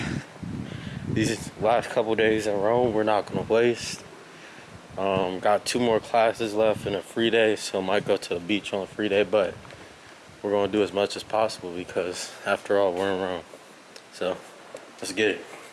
these last couple days in Rome, we're not going to waste. Got 2 more classes left and a free day, so I might go to the beach on a free day, but we're going to do as much as possible because after all, we're in Rome. So let's get it.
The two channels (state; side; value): identical; both; correlation 1.00